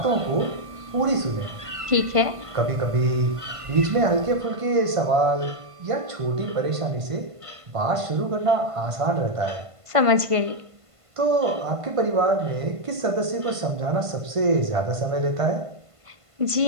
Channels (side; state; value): left; late; 1.5 ms